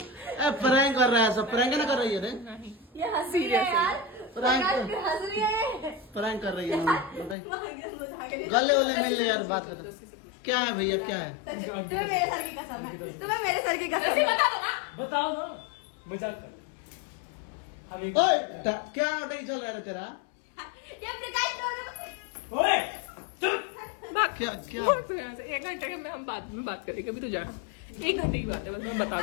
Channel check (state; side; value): drops out; right; at 7.4 s